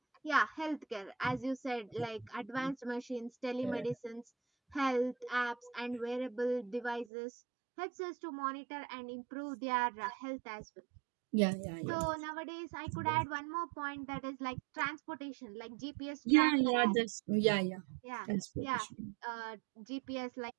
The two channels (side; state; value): left; drops out; at 7.1 s